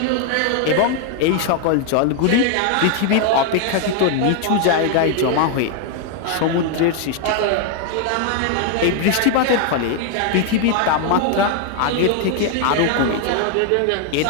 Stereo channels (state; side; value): different; both; correlation 0.00